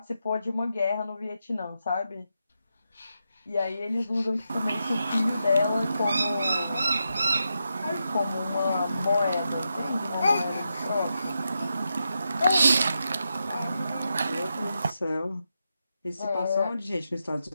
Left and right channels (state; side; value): inverted; both; correlation -0.86